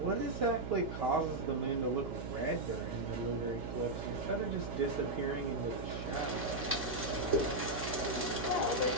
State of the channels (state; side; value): noise; right; hum, 7 dB below the sound